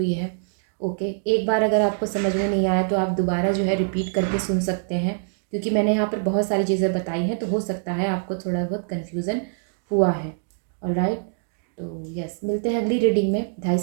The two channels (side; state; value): left; silent; digital silence